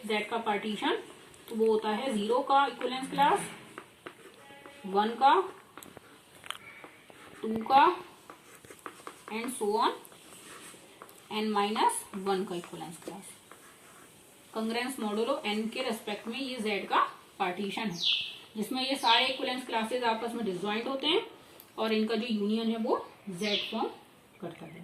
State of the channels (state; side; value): identical; both; correlation 1.00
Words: Z का पार्टीशन, तो वो होता है 0 का इक्विवेलेंस क्लास, 1 का, 2 का एंड सो ऑन, n-1 का इक्विवेलेंस क्लास। कंग्रेंस मॉडुलो n के रेस्पेक्ट में ये Z का पार्टीशन है, जिसमें ये सारे इक्विवेलेंस क्लासेस आपस में डिसजॉइंट होते हैं और इनका जो यूनियन है वो Z फॉर्म करता